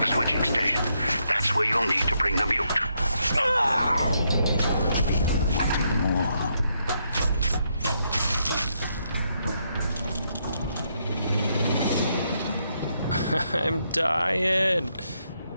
The switching station. That's where you'll need to bring the mute. More. I'm dying.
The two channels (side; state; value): both; inverted; correlation -0.78